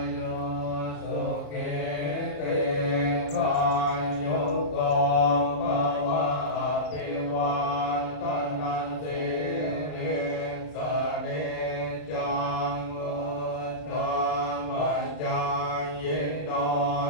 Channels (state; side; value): late; right; 33 ms